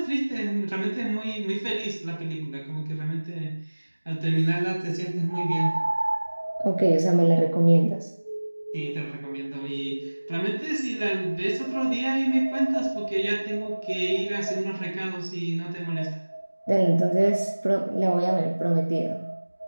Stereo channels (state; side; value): inverted; both; correlation -1.00